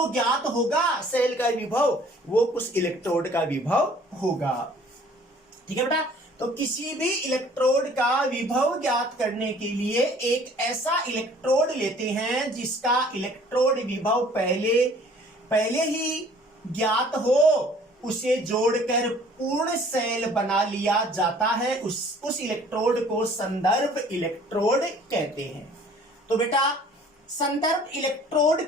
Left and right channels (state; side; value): normal; both; correlation 0.54